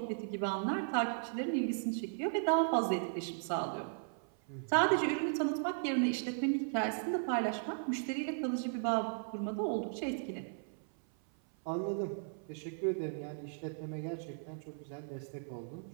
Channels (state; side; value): silent; left; 53 dB below the other